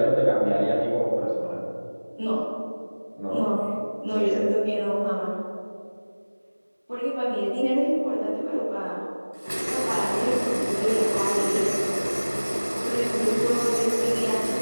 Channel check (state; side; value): inverted; both; correlation -1.00